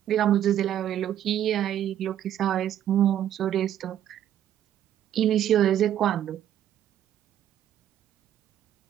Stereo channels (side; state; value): left; quieter; 11.0 dB